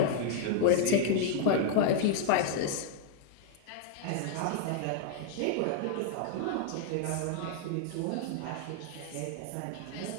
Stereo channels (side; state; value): both; different; correlation 0.00